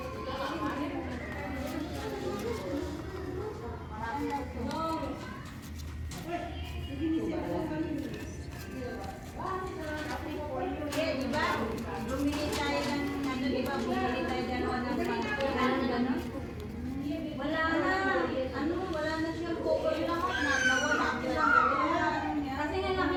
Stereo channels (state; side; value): identical; both; correlation 1.00